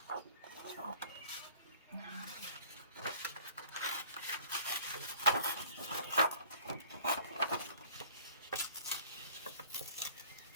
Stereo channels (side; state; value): both; inverted; correlation -0.51